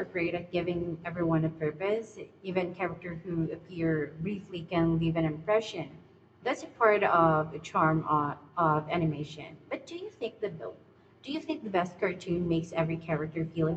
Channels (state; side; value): identical; both; correlation 1.00